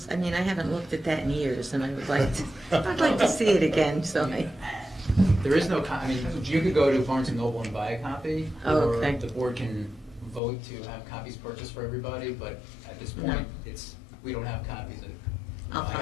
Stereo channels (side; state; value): right; drops out; at 10.4 s